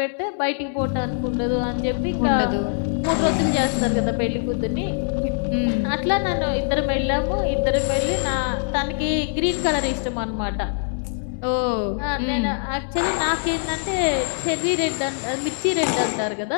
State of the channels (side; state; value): right; silent; digital silence